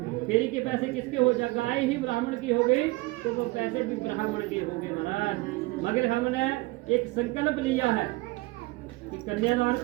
फेरी के पैसे किसके हो जाए? गाय ही ब्राह्मण की हो गई तो वो पैसे भी ब्राह्मण के हो गए महाराज। मगर हमने एक संकल्प लिया है कि कन्यादान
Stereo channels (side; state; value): left; quieter; 22.3 dB